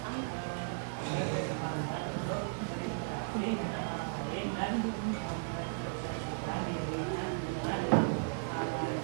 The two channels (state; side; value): silent; left; digital silence